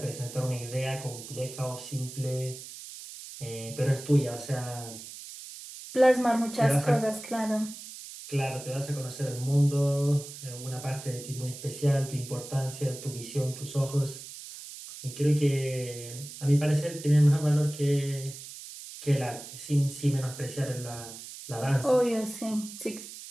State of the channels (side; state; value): right; noise; hiss, 13 dB below the sound